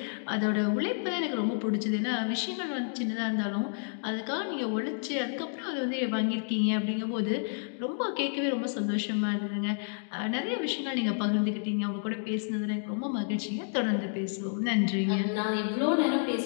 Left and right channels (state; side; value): silent; right; digital silence